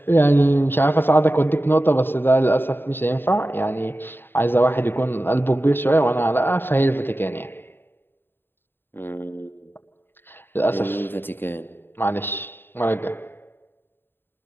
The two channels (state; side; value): late; right; 0.10 ms